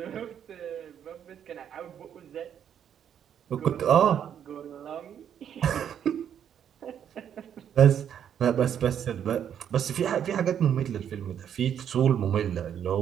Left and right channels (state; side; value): quieter; left; 9.1 dB